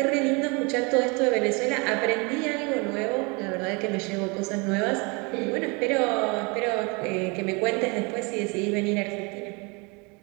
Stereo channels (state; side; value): quieter; left; 29.5 dB